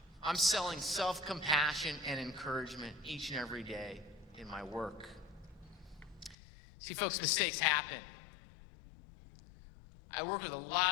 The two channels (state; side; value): drops out; right; at 6.4 s